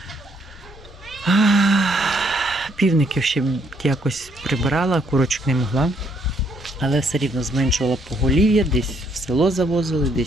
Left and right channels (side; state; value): both; normal; correlation 0.70